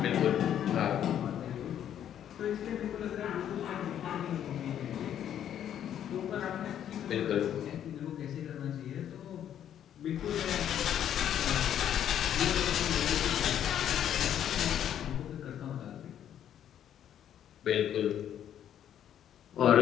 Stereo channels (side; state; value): right; quieter; 10.1 dB